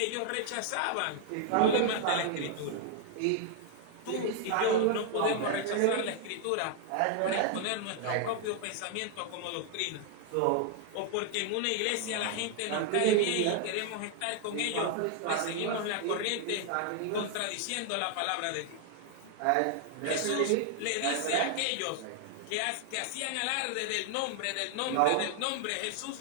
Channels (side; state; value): both; different; correlation 0.00